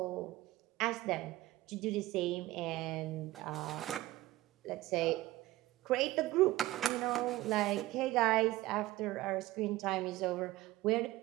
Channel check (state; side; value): quieter; left; 17.2 dB